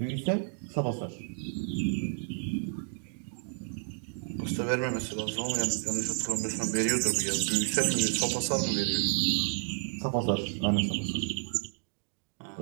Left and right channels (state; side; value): silent; left; digital silence